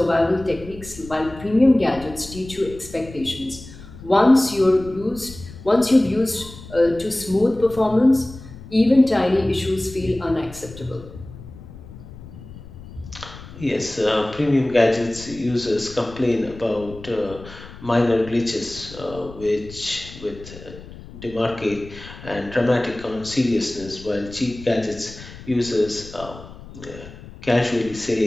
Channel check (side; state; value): left; noise; rumble, 16 dB below the sound